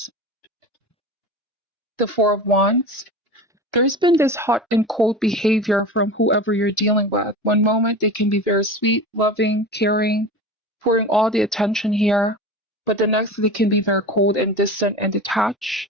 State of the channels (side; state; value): both; normal; correlation 0.31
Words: the Four of Wands. There's been this hot and cold behavior from whoever you're dealing with. One moment, they can be very sweet, loving, caring, pouring all the attention here, but the next, they can be very cold and distant and detached.